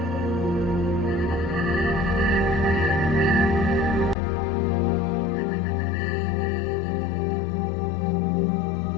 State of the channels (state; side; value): drops out; right; at 4.2 s